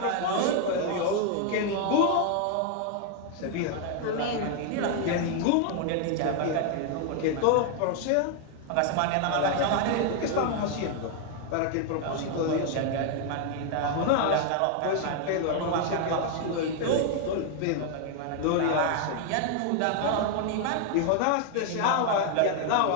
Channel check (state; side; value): different; both; correlation 0.00